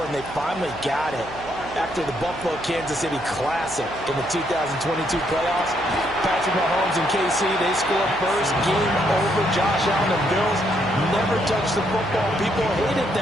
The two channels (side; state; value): right; noise; hum, 16 dB below the sound